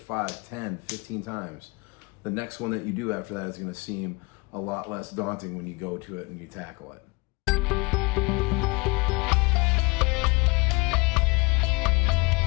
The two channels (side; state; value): right; quieter; 27.7 dB